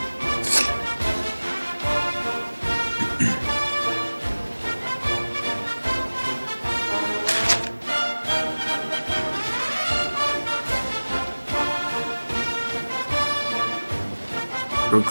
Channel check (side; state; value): both; inverted; correlation -1.00